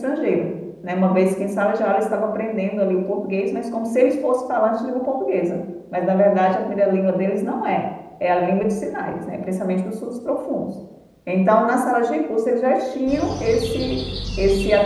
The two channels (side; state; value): both; identical; correlation 1.00